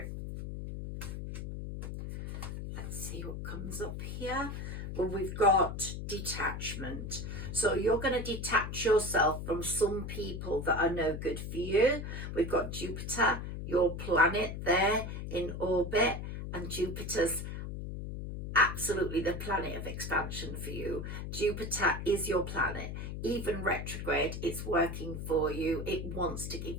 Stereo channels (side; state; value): left; noise; hum, 6 dB below the sound